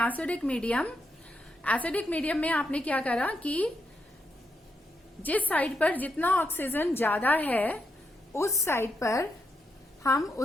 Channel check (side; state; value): both; normal; correlation 0.82